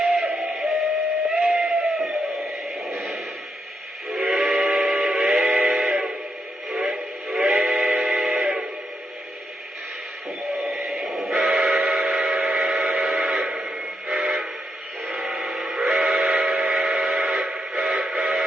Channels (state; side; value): normal; both; correlation 0.82